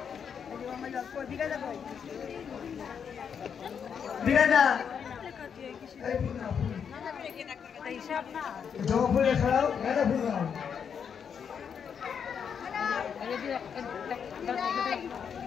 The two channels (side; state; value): right; quieter; 7.2 dB